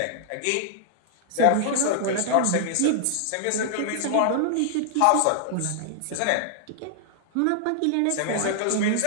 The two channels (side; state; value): both; different; correlation -0.01